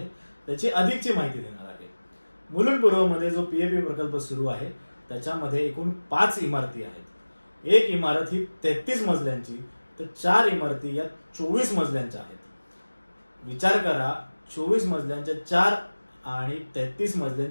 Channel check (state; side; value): inverted; both; correlation -1.00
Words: त्याची अधिकची माहिती देणार आहे. मुलुंड पूर्वमध्ये जो पीएपी प्रकल्प सुरू आहे त्याच्यामध्ये एकूण 5 इमारती आहेत. एक इमारत ही 33 मजल्यांची तर 4 इमारती या 24 मजल्यांच्या आहेत. विचार करा, 24 मजल्यांच्या 4 आणि 33